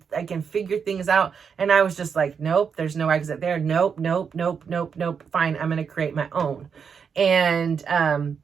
I can figure things out. And I was just like, nope, there's no exit there. Nope. Fine. I'm going to create my own. And,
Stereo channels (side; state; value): left; quieter; 6.5 dB